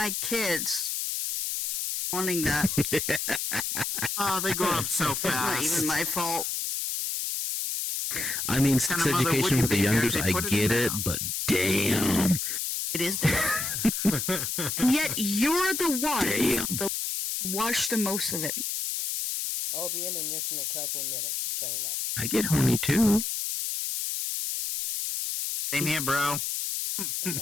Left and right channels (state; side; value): noise; left; hiss, 2 dB below the sound